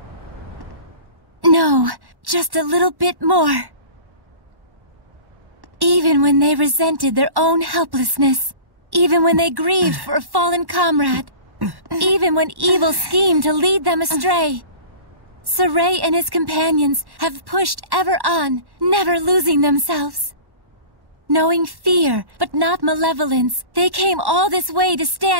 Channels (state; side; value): late; left; 1.1 ms